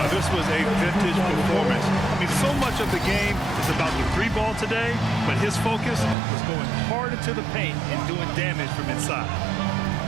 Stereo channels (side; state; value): left; drops out; at 6.2 s